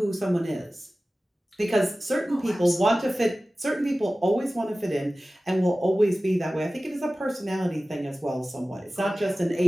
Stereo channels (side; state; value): both; normal; correlation 0.96